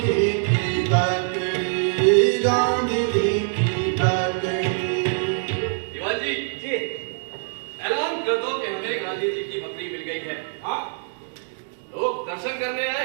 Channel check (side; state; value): left; silent; digital silence